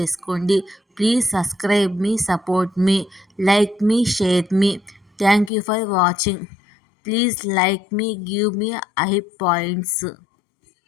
Please subscribe me, support me, like me, share me. Thank you for watching. Please like me, give me I points.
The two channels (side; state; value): right; drops out; at 5.5 s